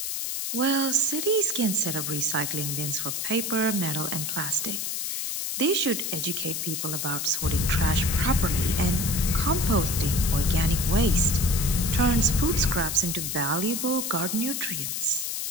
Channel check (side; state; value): left; noise; hiss, 2 dB below the sound